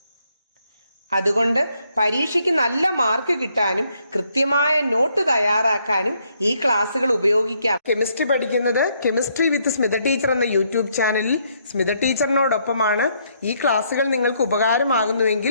അതുകൊണ്ട് പരീക്ഷയ്ക്ക് നല്ല മാർക്ക് കിട്ടാനും കൃത്യമായ നോട്ട് തയ്യാറാക്കാനും ഈ ക്ലാസ്സുകൾ ഉപയോഗിക്കാം. കെമിസ്ട്രി പഠിക്കുന്നത് കെമിസ്ട്രി വിത്ത് സ്മിത ടീച്ചർ എന്ന യൂട്യൂബ് ചാനലിൽ സ്മിത ടീച്ചറിനോടൊപ്പമാണ്. ഈ ക്ലാസ്സുകൾ നിങ്ങൾക്ക്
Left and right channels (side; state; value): both; inverted; correlation -0.72